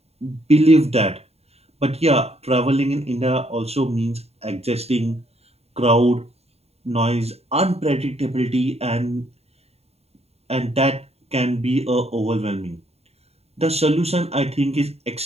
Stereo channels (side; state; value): left; late; 0.30 ms